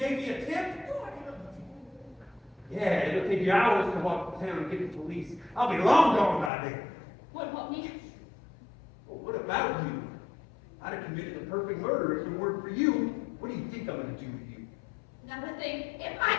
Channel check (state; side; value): drops out; right; at 6.5 s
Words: me a tip? Yeah, it'll take you hours to walk to town and get the police. I'll be long gone by then. What about me? Well, what about you? I'd have committed the perfect murder if it weren't for you. What do you think I'm going to do to you? Not a thing. If I